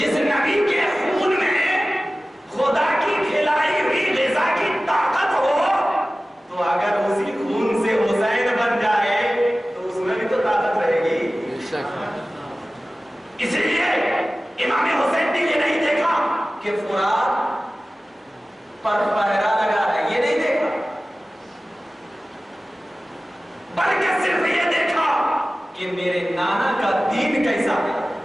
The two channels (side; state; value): both; normal; correlation 0.96